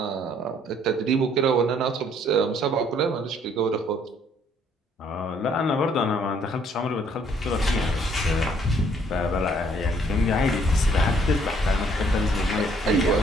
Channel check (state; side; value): normal; both; correlation 0.64